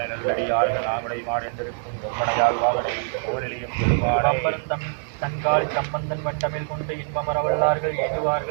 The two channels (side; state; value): left; silent; digital silence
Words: தன்காலி சம்பந்தன் வண்டமில் கொண்டு இன்பமரவல்லார்கள்